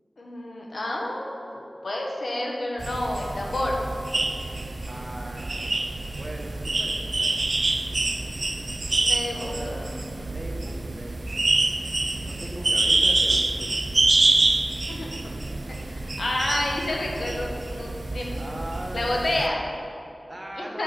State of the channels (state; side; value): normal; both; correlation 0.97